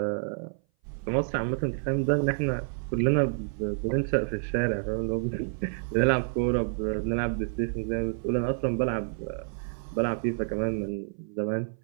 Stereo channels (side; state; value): left; silent; 57 dB below the other